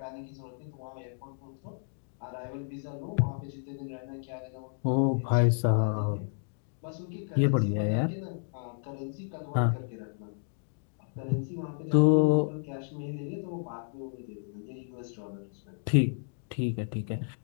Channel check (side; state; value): right; silent; digital silence